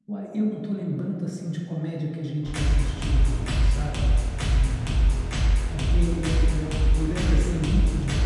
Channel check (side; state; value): both; identical; correlation 1.00